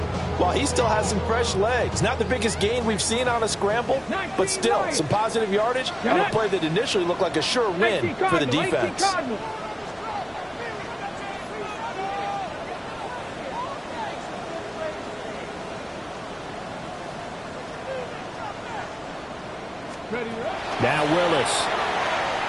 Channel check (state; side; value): identical; both; correlation 1.00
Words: while he still has some fresh legs. Not the biggest gain we've seen on a scramble, but still some positive yardage on a play that initially looked like a sure win for the defense. Now Willis.